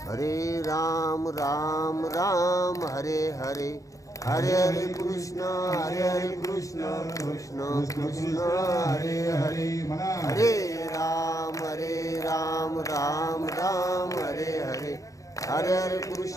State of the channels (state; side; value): late; right; 0.16 ms